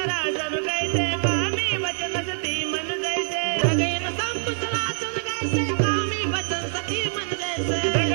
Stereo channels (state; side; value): silent; left; digital silence